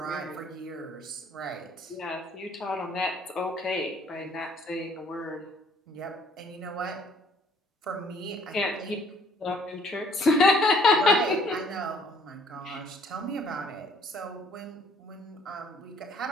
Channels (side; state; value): both; normal; correlation 0.60